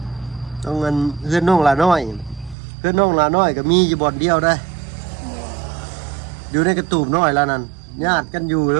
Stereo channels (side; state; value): left; drops out; at 2.6 s